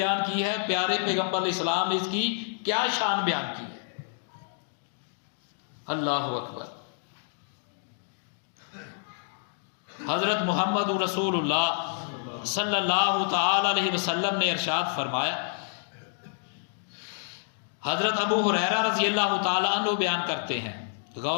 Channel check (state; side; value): silent; right; digital silence